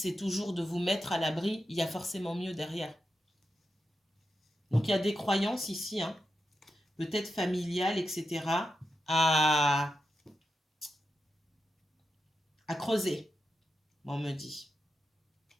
toujours de vous mettre à l'abri, il y a forcément mieux derrière. Donc, il y a des croyances ici, hein, peut-être familiales, etc., à creuser, on me dit.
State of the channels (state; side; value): normal; both; correlation 0.88